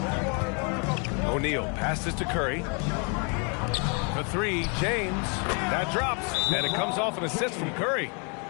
O'Neal passes to Curry. For 3, James. That drops, and it comes off an assist from Curry.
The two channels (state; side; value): quieter; right; 36.2 dB